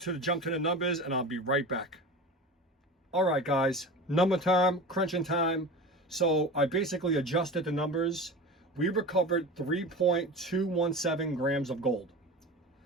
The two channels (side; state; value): both; normal; correlation 0.32